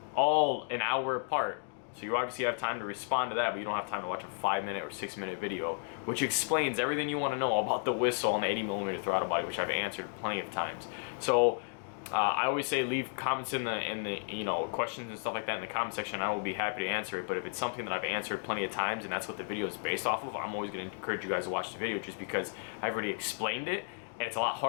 all an hour apart. So you obviously have time to respond to that, but you don't have time to watch a 5-minute or 6-minute video, which explains everything you want to know about the whistle and the 80mm throttle body, which I've answered plenty of times. So I always say leave comments in the you know, questions and stuff like that in the comment section. I will be happy to answer it. But if it's something that I've answered plenty of times and that's what the video is based off of, I'm always going to encourage you guys to watch the video, just because I've already explained it, and it's a lot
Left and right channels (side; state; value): right; silent; 56 dB below the other